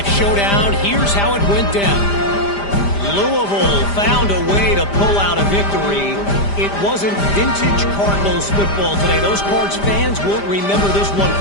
showdown. Here's how it went down. Louisville found a way to pull out a victory. It wasn't vintage Cardinals football today. Those Cards fans won't remember this one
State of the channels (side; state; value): right; late; 5.0 ms